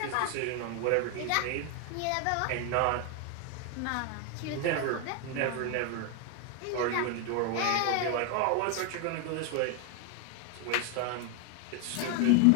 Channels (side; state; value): both; different; correlation 0.01